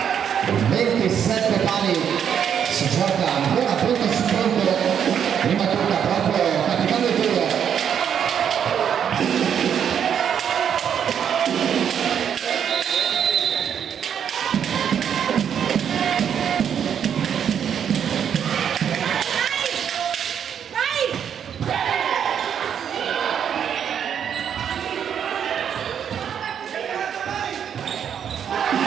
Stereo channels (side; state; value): left; quieter; 8.4 dB